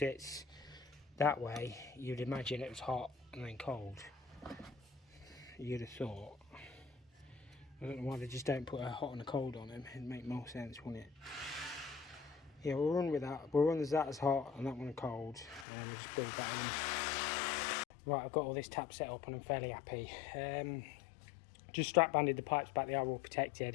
that way, you'd imagine it was hot and then cold. You'd have thought. I don't know why they just don't put a hot and a cold on them. It'd make more sense, wouldn't it? Yeah, we'll run with that. We'll run as that as hot and that one cold, and then we'll just build that in. Right, I've got all this tap set up and I'm fairly happy. Just strap banded the pipes back, they are all protected.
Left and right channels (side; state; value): right; drops out; at 15.7 s